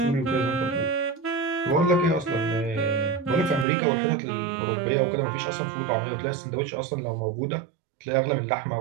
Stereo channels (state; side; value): drops out; left; at 3.7 s